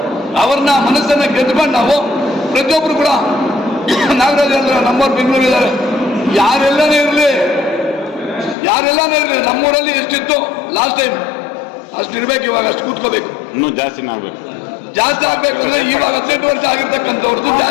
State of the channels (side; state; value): right; drops out; at 8.6 s